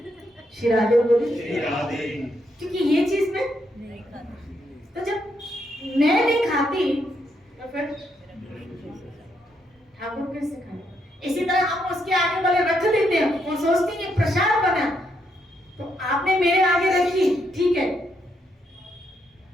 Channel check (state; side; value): normal; both; correlation 0.77